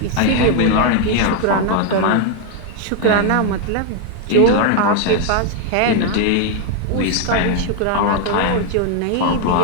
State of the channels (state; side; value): different; both; correlation 0.01